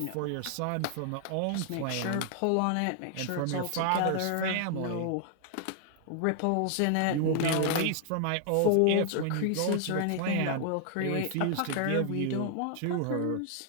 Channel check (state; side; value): different; both; correlation 0.00